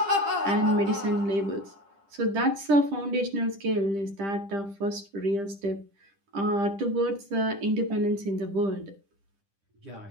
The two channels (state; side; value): late; left; 10 ms